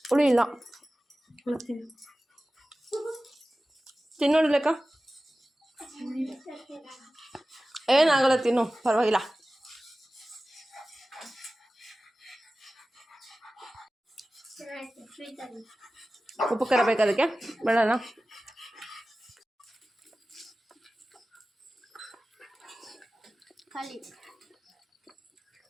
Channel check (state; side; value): normal; both; correlation 0.96